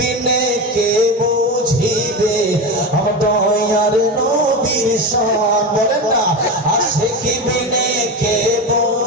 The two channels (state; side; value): normal; both; correlation 0.21